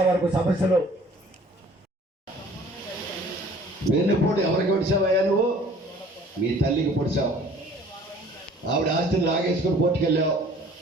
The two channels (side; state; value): both; normal; correlation 0.52